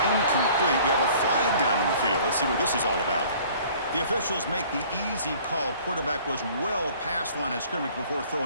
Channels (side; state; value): both; inverted; correlation -0.52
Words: we have a flag down in the field. Let's see what this is all about. The officials make the easy call. Quarterback was well past the line of scrimmage before